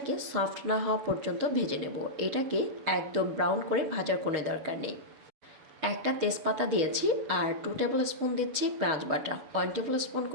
সফট না হওয়া পর্যন্ত ভেজে নেব। এটাকে একদম ব্রাউন করে ভাজার কোনো দরকার নেই। একটা তেজপাতা দিয়েছি আর 2 টেবিল স্পুন দিচ্ছি পেঁয়াজ বাটা, 1 টেবিল স্পুন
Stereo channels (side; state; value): left; late; 6.9 ms